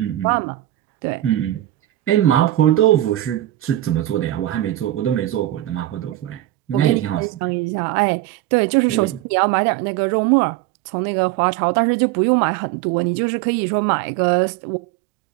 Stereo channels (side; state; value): left; quieter; 14.6 dB